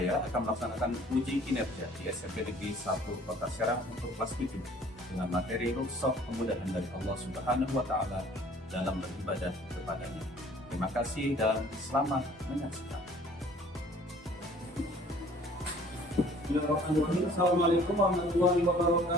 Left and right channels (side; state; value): both; normal; correlation 0.53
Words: akan melaksanakan uji kinerja di SMP Negeri 1 Kota Serang untuk kelas 7 dengan materi rukhsah kemudahan dari Allah Subhanahu wa Ta'ala dalam beribadah kepadanya. Terima kasih dan selamat menyaksikan. Bismillahirrahmanirrahim. Assalamualaikum warahmatullahi